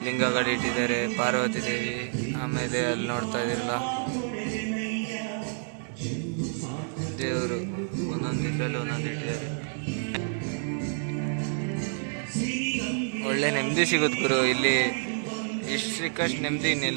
ಲಿಂಗಗಳು ಇಟ್ಟಿದ್ದಾರೆ. ಪಾರ್ವತಿ ದೇವಿ, ಆಮೇಲೆ ಅಲ್ಲಿ ನೋಡ್ತಾ ಇದ್ದೀರಲ್ಲ ದೇವರು, ಒಂದೊಂದು ಇದರಲ್ಲಿ ಒಂದೊಂದು ಇಟ್ಟಿದ್ದಾರೆ. ಒಳ್ಳೆ ನೆಮ್ಮದಿ ಸಿಗುತ್ತೆ ಗುರು ಇಲ್ಲಿ. ಇಷ್ಟು ಸಿಕ್ಕಷ್ಟು ನೆಮ್ಮದಿ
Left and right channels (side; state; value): left; silent; 59 dB below the other